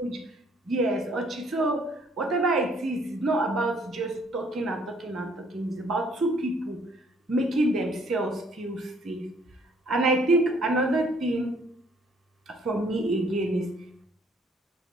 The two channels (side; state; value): both; normal; correlation 0.62